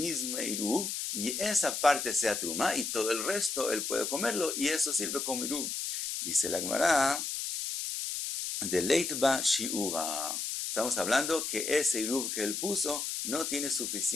iruv y esa parte sea truma y todo el resto él puede comerlo y eso sirve como iruv. Dice la Gemara, de leitba shiura. Estamos hablando que ese iruv que él puso no tiene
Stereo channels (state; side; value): noise; left; hiss, 3 dB below the sound